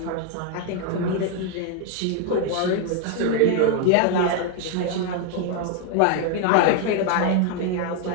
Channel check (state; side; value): different; both; correlation 0.01